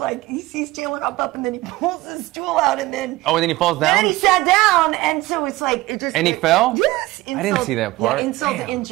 he sees Chandler hop up, and then he pulls his stool out, and then... Oh, and then he falls down? And then he sat down, and so it's like... it just. And he fell? Yes. I didn't see that part. Yeah, insult to Damn.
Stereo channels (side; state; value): left; quieter; 18.8 dB